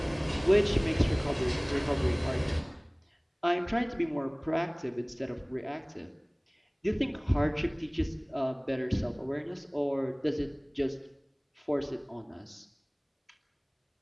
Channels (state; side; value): identical; both; correlation 1.00